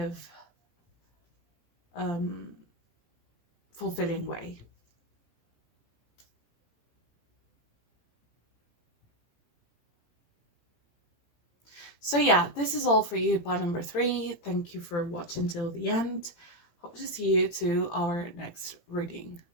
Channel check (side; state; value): right; late; 18 ms